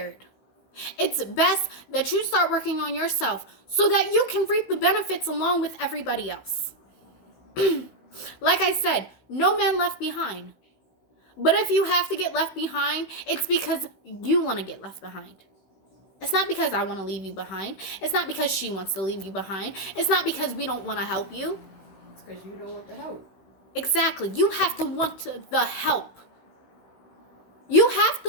It's best that you start working on yourself so that you can reap the benefits along with everybody else. Like I said, no man left behind. But if you have to get left behind, it's because you want to get left behind. It's not because I want to leave you behind. It's not because she wants to leave you behind. It's not because we don't want to help you. It's because you don't want the help. Exactly. You have to want the help. You have to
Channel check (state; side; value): late; right; 16 ms